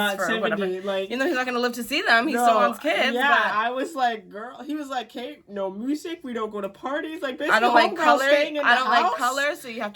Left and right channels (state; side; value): identical; both; correlation 1.00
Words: for 70. Whatever. Like, you know, he's not gonna live to see them. He still wants kids. Yeah, but I was like, girl. He was like, Kate, no music. We don't go to parties. Like, basically, I don't like color. I don't like color, so you have